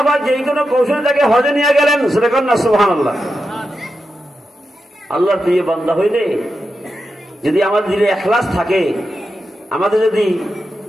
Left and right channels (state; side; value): normal; both; correlation 0.89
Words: পাক যেই কোনো কৌশলে তাকে হজে নিয়ে গেলেন। জোরে বলেন না সুবহানাল্লাহ। আল্লাহর প্রিয় বান্দা হইলে যদি আমাদের দিলে ইখলাস থাকে, আমাদের যদি